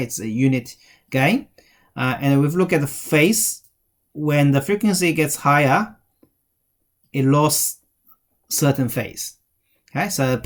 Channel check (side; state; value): both; identical; correlation 1.00